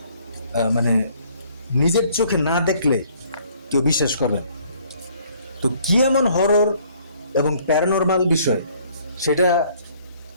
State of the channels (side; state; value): both; inverted; correlation -0.60